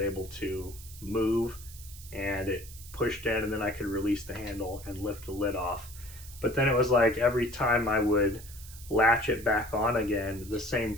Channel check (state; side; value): noise; right; hiss, 17 dB below the sound